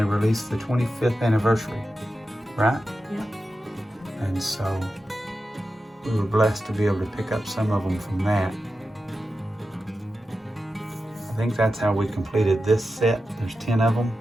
released the 25th anniversary, right? Yeah. And so we were blessed to be able to pick up some of them from that. I think that's how we completed this set. There's 10 of them.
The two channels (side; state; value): both; normal; correlation 0.91